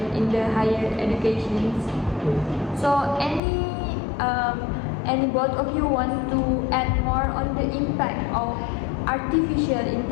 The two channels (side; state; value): right; drops out; at 3.4 s